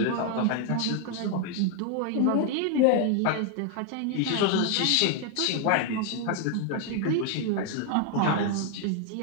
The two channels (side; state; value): both; different; correlation 0.00